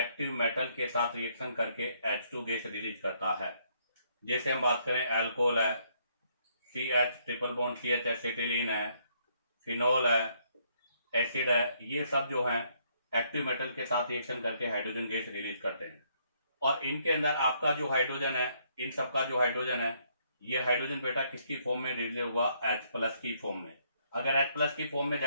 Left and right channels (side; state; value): both; inverted; correlation -0.70